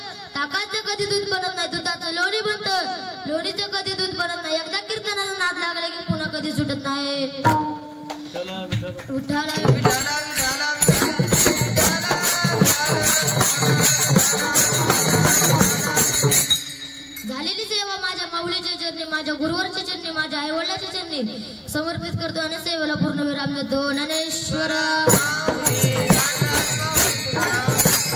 ताकाचं कधी दूध बनत नाही दुधाचं लोणी बनतं लोणीचं कधी दूध बनत नाही एकदा कीर्तनाला नाद लागले की पुन्हा कधी सुटत नाही विठ्ठला विठ्ठला झालेली सेवा माझ्या माऊलीच्या चरणी माझ्या गुरुवरच्या चरणी माझ्या आई वडिलांच्या चरणी समर्पित करतो आणि सेवेला पूर्ण विराम देतो ज्ञानेश्वर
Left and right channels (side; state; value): both; identical; correlation 1.00